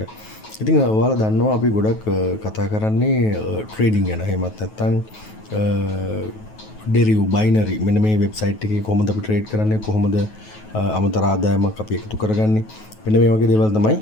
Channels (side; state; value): right; late; 9.3 ms